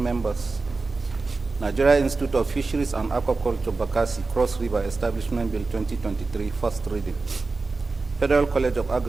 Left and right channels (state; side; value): quieter; left; 3.8 dB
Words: Nigeria Institute of Fisheries and Aquaculture, Bakassi, Cross River Establishment Bill 2023, first reading. Federal College of